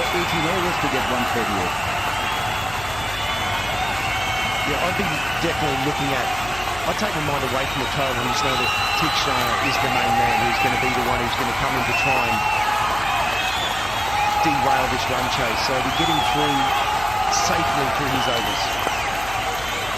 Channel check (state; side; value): noise; left; hum, 14 dB below the sound